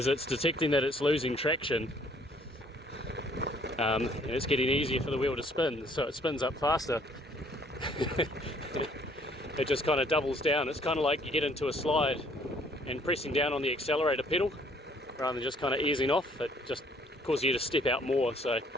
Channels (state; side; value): normal; both; correlation 0.61